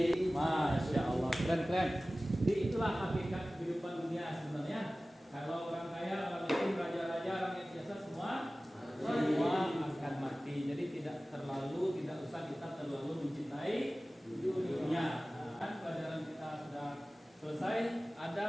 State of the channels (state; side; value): normal; both; correlation 0.97